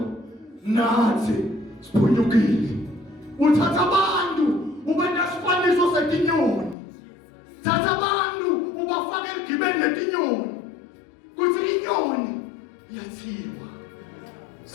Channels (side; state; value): right; drops out; at 6.8 s